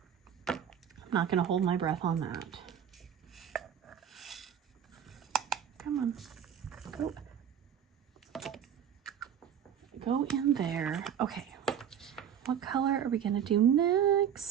I'm not going to hold my breath on that. Come on. Go. Go in there. Okay. What color are we going to do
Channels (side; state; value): left; quieter; 8.7 dB